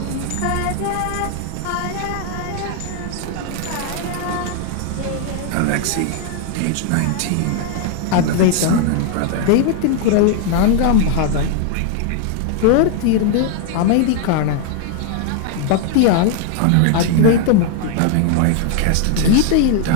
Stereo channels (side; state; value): both; different; correlation 0.00